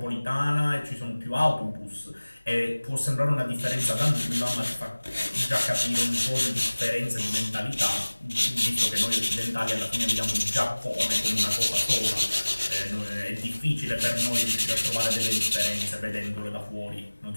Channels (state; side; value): inverted; both; correlation -1.00